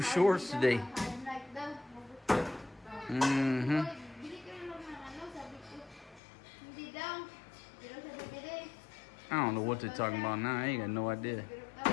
shorts today. I'm like daw. Mm-hmm. Bili ka na lang ng ano, sabi ko. Hindi daw. Pero sa bibili. I don't know what they're talking about now. I ain't got no idea. Pero daw,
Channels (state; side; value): drops out; right; at 6.2 s